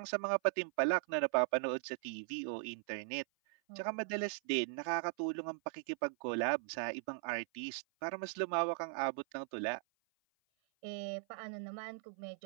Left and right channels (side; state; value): left; silent; 52 dB below the other